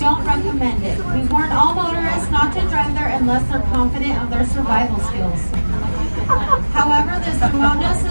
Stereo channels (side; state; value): both; inverted; correlation -1.00